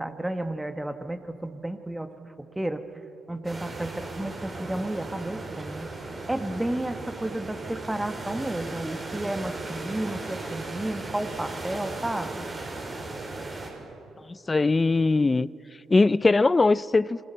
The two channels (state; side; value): normal; both; correlation 0.95